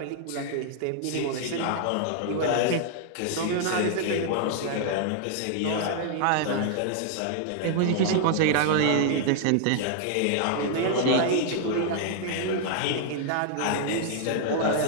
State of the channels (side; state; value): both; different; correlation 0.00